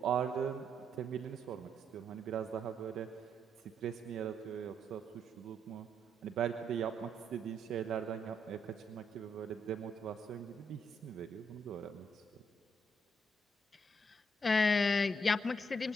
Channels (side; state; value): both; normal; correlation 0.75